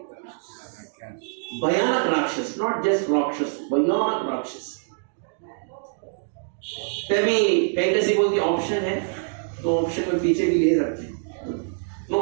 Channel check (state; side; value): silent; left; digital silence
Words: भयानक राक्षस, नॉट जस्ट राक्षस, भयानक राक्षस। तभी कैकसी बोलती, ऑप्शन है तो ऑप्शन में पीछे भी ले सकते हैं, नो